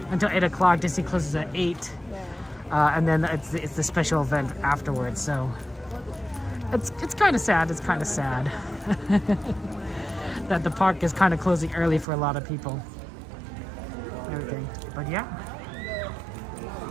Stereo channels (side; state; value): left; drops out; at 12.1 s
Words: until 8 o'clock. Disney closes at 8, and then it's the special event afterwards. So it's kind of sad. It's kind of sad that the park is kind of closing early for a lot of people. Everything, but yeah.